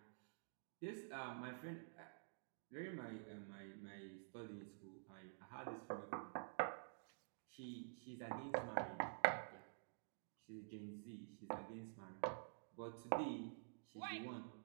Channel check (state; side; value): silent; left; digital silence